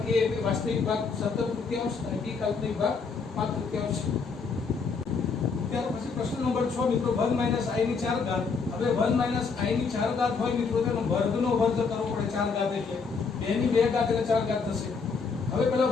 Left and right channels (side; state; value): right; quieter; 5.0 dB